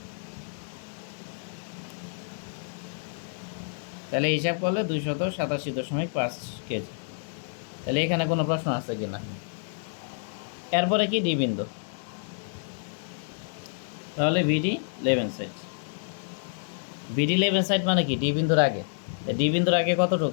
তাহলে হিসাব করলে 287.5 কেজি। তাহলে এখানে কোনো প্রশ্ন আছে কি না? এরপরে কি? ডি বিন্দু। তাহলে ভিডি লেভেন সাইড, ভিডি লেভেন সাইড মানে কি? ডি বিন্দুর আগে। ডি বিন্দুর আগে কতটুক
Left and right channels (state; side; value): silent; right; digital silence